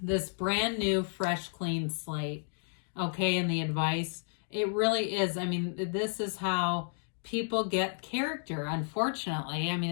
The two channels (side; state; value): right; silent; 56 dB below the other